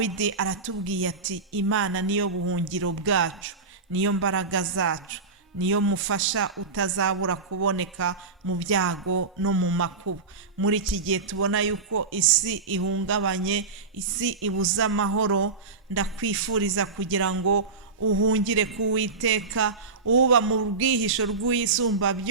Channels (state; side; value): quieter; left; 4.3 dB